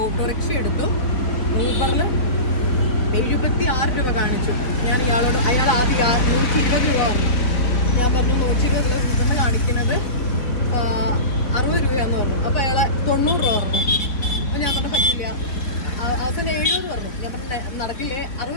ഓട്ടോറിക്ഷ എടുത്തു. ഊബറിൽ 76 രൂപ കാണിച്ചു. ഞാൻ അയാൾ ആദ്യം 120 രൂപ പറഞ്ഞു. ഞാൻ പറഞ്ഞു 120 ഊബറിന് കാണിക്കുന്നത് 60 രൂപയാന്ന് പറഞ്ഞു. അപ്പൊ അയാളെ 90 രൂപ പറഞ്ഞു. അപ്പൊ ഞാൻ പറഞ്ഞു പറ്റില്ല, അവസാനം 70 പറഞ്ഞു. ഞാൻ പറഞ്ഞു നടക്കില്ലേ,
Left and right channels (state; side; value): late; right; 4.2 ms